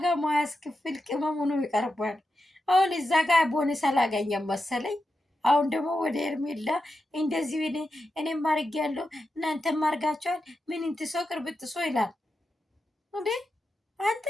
ማያስከፍል ቅመም ሆኖ ይቀርባል። አሁን እዛ ጋር ቦነስ አላገኘም መሰለኝ። አሁን ደግሞ ወደ ኤርሜላ እንደዚህ እኔም አድርጌያለሁ እናንተም አድርጋችኋል፣ ምን እንትሶ ቅርብጥሶ ይላል እንዴ አንተ።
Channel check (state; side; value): normal; both; correlation 0.89